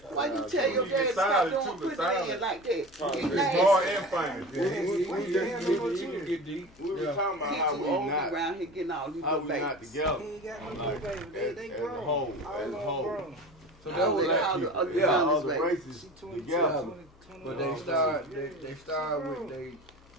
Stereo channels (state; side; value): noise; left; hum, 27 dB below the sound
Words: Why you tell your You dad get stop silent doing too, putting but it in silent. like that? He It's nasty. hard and fine. Yeah, We you can get deep. We were Yeah. talking about He how too we old not, around here getting all these how little we not babies. together. He ain't got no Like, little baby. They as a grown. whole, All as of a them whole. grown. So All that was the- like, all the Yeah, all youngest the babies. races She 22, together. 20, but they start with